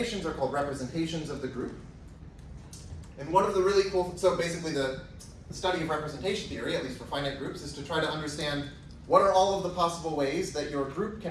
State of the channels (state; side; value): identical; both; correlation 1.00